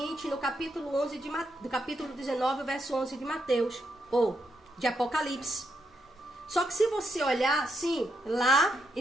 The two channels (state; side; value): normal; both; correlation 0.80